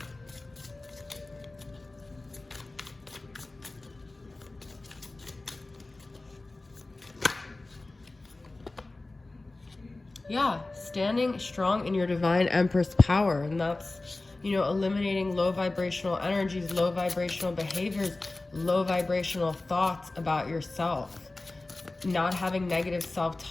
Yeah, standing strong in your divine Empress power, and that's, you know, eliminating low vibrational energies, low vibrational behaviors, low vibrational thoughts about yourself. Not having negative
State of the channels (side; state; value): right; quieter; 3.1 dB